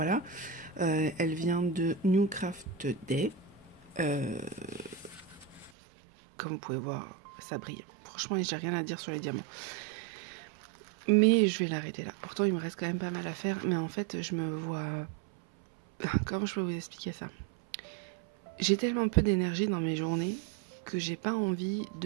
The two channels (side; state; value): left; drops out; at 5.7 s